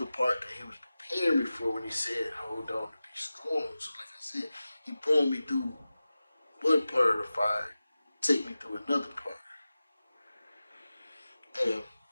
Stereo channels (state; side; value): inverted; both; correlation -0.95